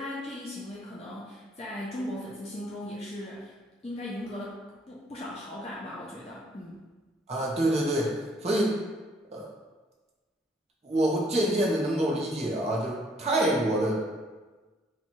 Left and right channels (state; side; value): normal; both; correlation 0.64